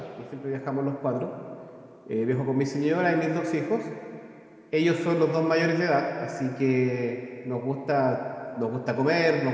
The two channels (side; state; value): both; identical; correlation 1.00